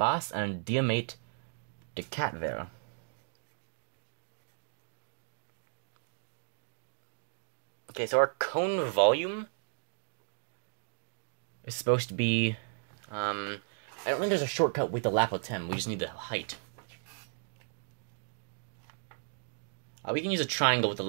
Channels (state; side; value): silent; left; digital silence